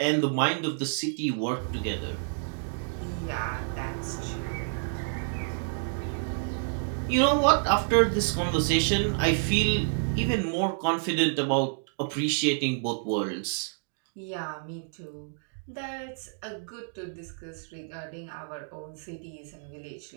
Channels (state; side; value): silent; left; digital silence